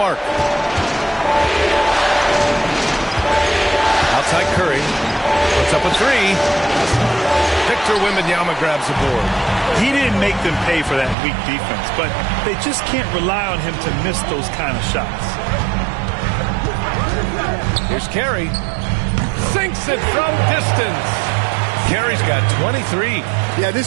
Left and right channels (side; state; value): left; drops out; at 11.2 s